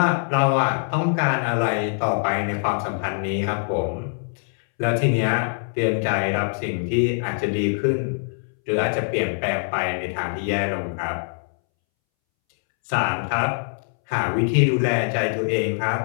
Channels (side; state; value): right; silent; 63 dB below the other